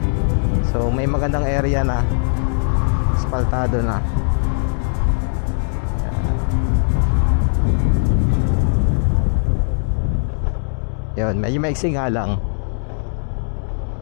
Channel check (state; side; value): silent; right; digital silence